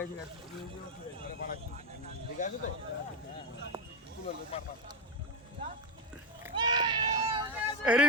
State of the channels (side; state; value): both; normal; correlation 0.11